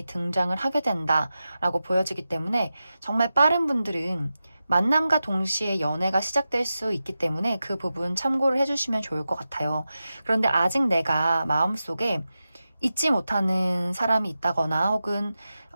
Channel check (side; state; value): both; inverted; correlation -0.92